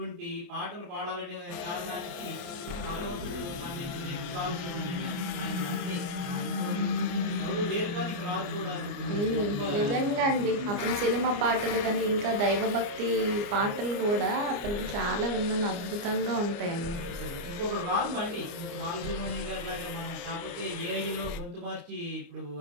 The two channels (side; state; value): left; late; 29 ms